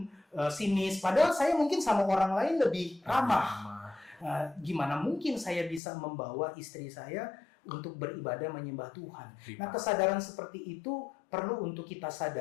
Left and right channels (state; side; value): drops out; right; at 5.8 s